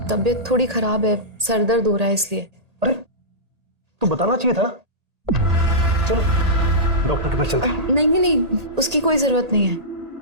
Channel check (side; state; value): left; late; 1.8 ms